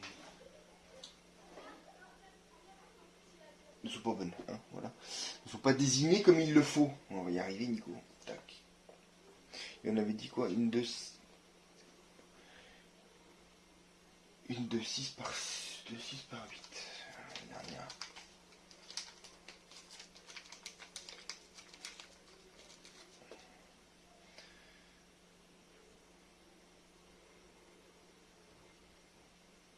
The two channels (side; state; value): both; identical; correlation 1.00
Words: bonnes, hein, voilà. Ne sont pas désignées comme il le faut. On va y arriver, Nico. Tac. Et on avait dit quoi? Une de 6 par 8. La dernière.